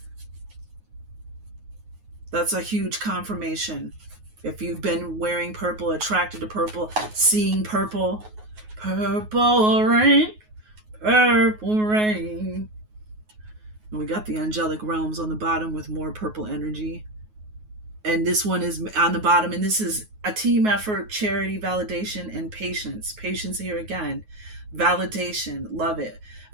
That's a huge confirmation. If you've been wearing purple, attracted to purple, seeing purple, purple rain, purple rain. And we got the angelic realms on the bottom with more purple energy. And this one is on the bottom. And this is a team effort, charity, validation, and patience. Patience here again. Validation. Love it.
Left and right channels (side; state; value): left; late; 9.4 ms